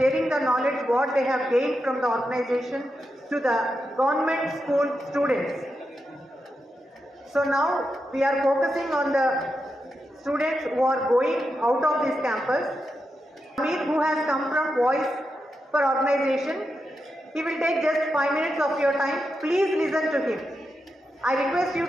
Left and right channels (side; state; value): both; normal; correlation 0.87